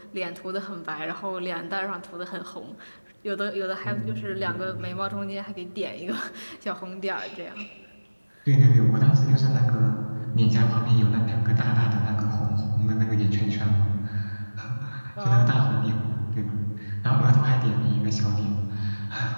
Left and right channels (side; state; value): both; inverted; correlation -1.00